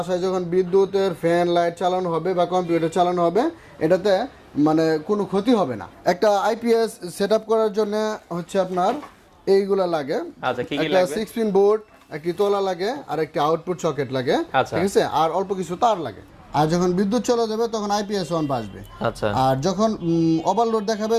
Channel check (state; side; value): identical; both; correlation 1.00